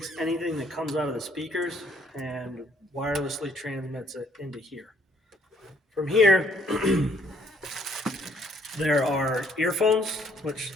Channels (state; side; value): normal; both; correlation 0.65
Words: anything that comes out of the speakers and wirelessly transmits it into here. From here, there are earphones, which